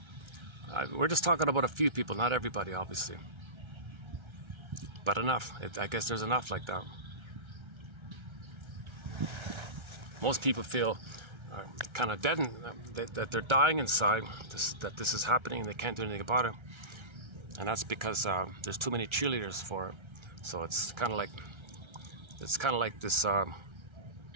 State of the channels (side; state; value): left; late; 1.3 ms